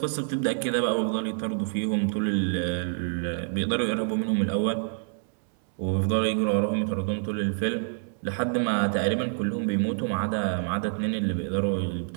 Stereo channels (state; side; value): silent; left; 60 dB below the other